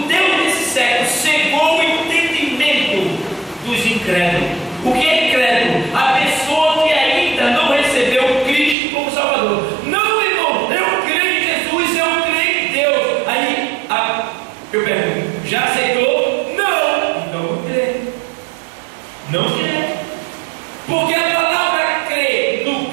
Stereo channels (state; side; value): drops out; left; at 8.8 s